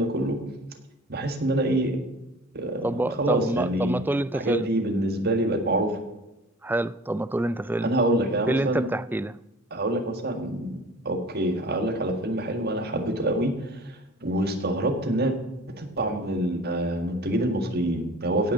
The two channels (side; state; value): both; normal; correlation 0.43